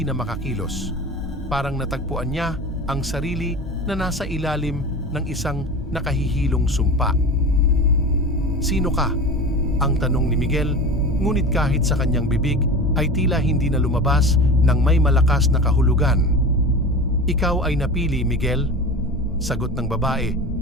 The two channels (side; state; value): both; normal; correlation 0.32